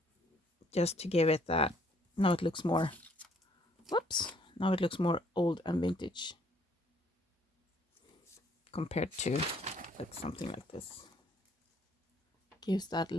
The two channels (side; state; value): both; normal; correlation 0.63